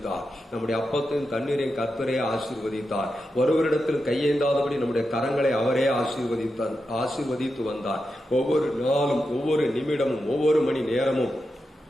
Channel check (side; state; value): both; normal; correlation 0.88